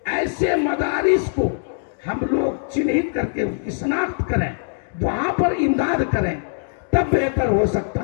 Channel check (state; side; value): silent; right; digital silence